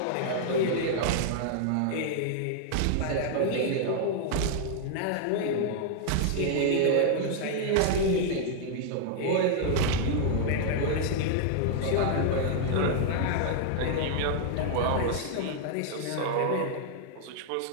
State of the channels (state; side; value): different; both; correlation -0.01